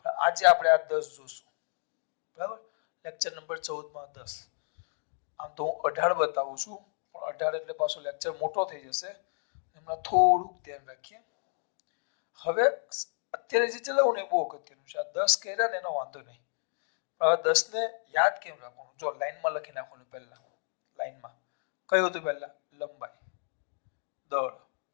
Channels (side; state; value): right; silent; digital silence